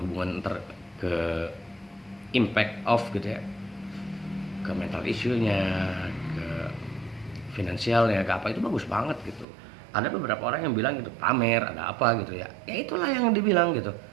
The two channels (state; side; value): drops out; left; at 9.5 s